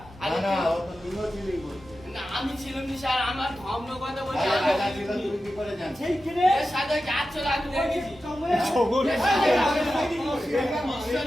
না না ও তো তুমিও ছিলি বলছে না আমি ছিলাম নি স্যার আমার ধর্ম কথা বলছে রাজা ছিল তুমি কি করে জানো? এর সাথে যাচ্ছিল আমি দেখেছি ছগুন এর সাথে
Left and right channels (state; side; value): normal; both; correlation 0.92